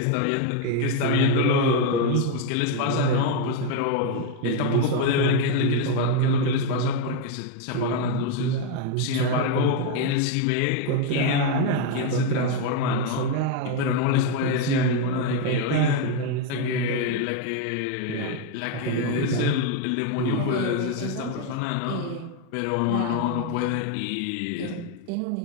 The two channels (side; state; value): both; different; correlation 0.02